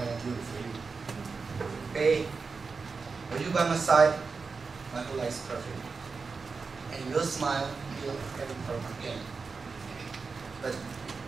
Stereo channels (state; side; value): quieter; left; 4.7 dB